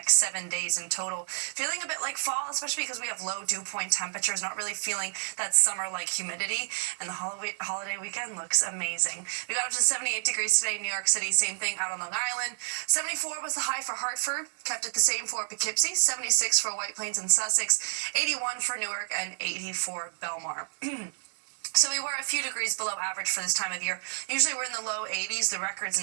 7 days in total. Feeling a bit like fall, especially because we have low dew point temperatures, not really feeling that summer-like humidity, and the holiday weekend looks amazing. We got up to 78 degrees today in New York City, same thing out on Long Island. 74 was the high for Hartford, kept it the same for Poughkeepsie, 76 for White Plains and Sussex, 81 for Newark, and 80 for Belmar. So we were a few degrees below average for this time of year. Usually we're in the low 80s. The record's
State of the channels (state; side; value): silent; left; 56 dB below the other